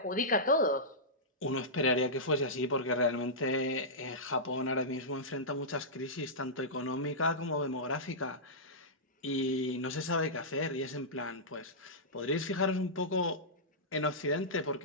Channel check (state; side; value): normal; both; correlation -0.14